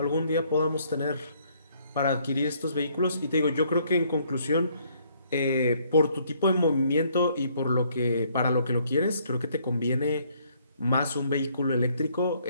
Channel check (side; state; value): both; inverted; correlation -0.66